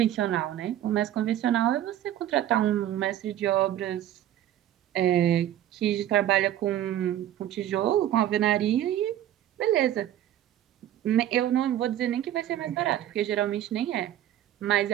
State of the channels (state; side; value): quieter; left; 12.0 dB